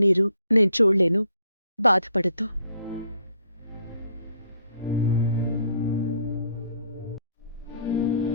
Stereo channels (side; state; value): both; inverted; correlation -0.66